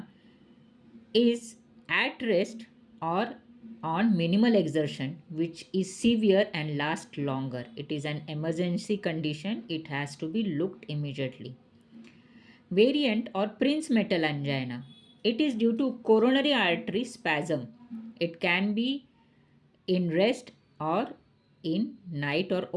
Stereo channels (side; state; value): both; identical; correlation 1.00